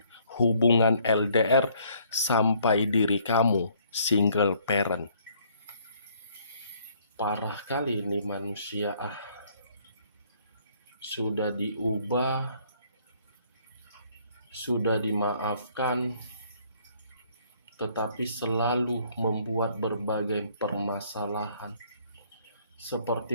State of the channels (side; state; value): both; inverted; correlation -0.64